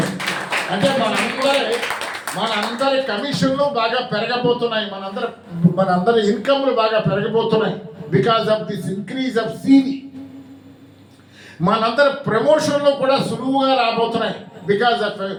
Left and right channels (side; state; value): both; identical; correlation 1.00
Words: అంటే మనందరి కమిషన్లు బాగా పెరగబోతున్నాయి, మనందరి ఇన్కమ్లు బాగా పెరగబోతున్నాయి because of this increase of CV. మనందరి ప్రమోషన్లు కూడా సులువుగా రాబోతున్నాయి because